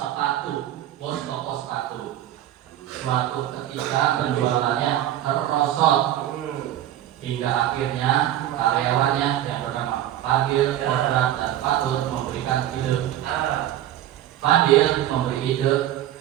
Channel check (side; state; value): left; quieter; 12.5 dB